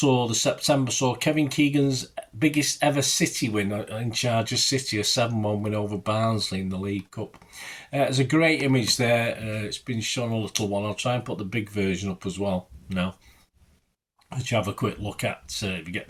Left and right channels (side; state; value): both; identical; correlation 1.00